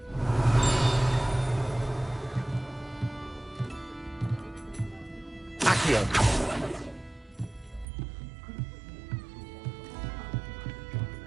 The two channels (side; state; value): left; drops out; at 7.9 s